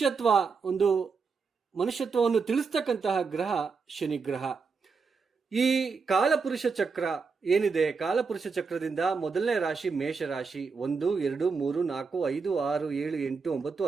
ಮನುಷ್ಯತ್ವವನ್ನು ತಿಳಿಸ್ತಕ್ಕಂತಹ ಗ್ರಹ ಶನಿ ಗ್ರಹ. ಈ ಕಾಲಪುರುಷ ಚಕ್ರ ಏನಿದೆ, ಕಾಲಪುರುಷ ಚಕ್ರದಿಂದ ಮೊದಲನೇ ರಾಶಿ ಮೇಷ ರಾಶಿ. 1, 2, 3, 4, 5, 6, 7, 8, 9,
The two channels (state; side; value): quieter; left; 5.0 dB